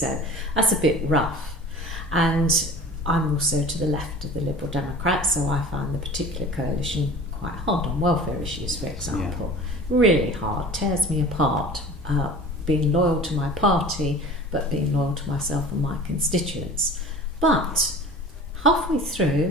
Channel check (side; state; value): both; normal; correlation 0.40